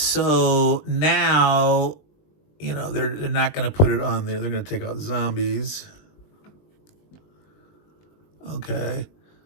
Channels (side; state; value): right; late; 20 ms